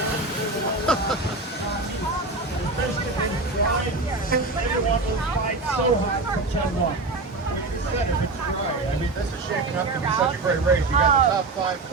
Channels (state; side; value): quieter; left; 3.4 dB